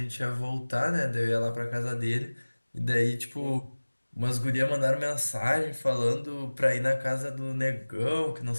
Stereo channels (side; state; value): both; inverted; correlation -1.00